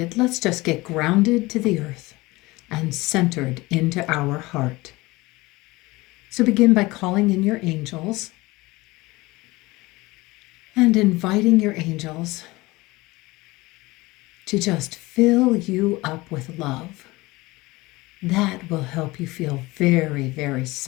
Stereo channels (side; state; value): right; quieter; 21.3 dB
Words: let's just get grounded to the earth and centered into our heart. So begin by calling in your angels and inviting your angels to just fill you up with love. That will help you feel very, very